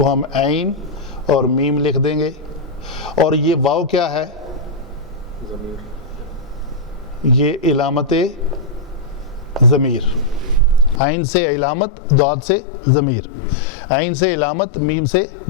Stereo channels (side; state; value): right; drops out; at 11.0 s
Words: ہم عین اور میم لکھ دیں گے، اور یہ واو کیا ہے؟ یہ علامت ضمیر، عین سے علامت، ضاد سے ضمیر، عین سے علامت، میم سے